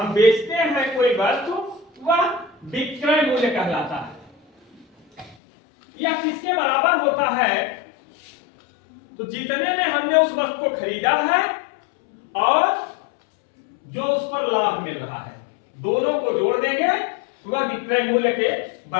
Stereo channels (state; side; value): drops out; right; at 5.4 s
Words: बेचते हैं कोई वस्तु, वह विक्रय मूल्य कहलाता है। यह किसके बराबर होता है? तो जितने में हमने उस वस्तु को खरीदा है और जो उस पर लाभ मिल रहा है, दोनों को जोड़ देंगे तो वह विक्रय मूल्य के